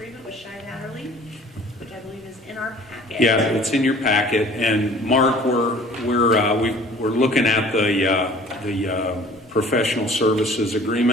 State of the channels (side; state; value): both; normal; correlation 0.49